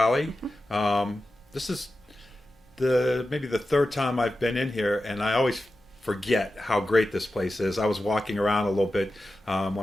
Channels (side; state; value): both; normal; correlation 0.92